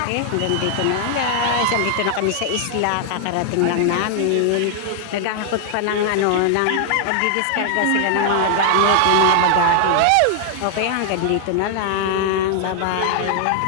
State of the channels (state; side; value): different; both; correlation 0.00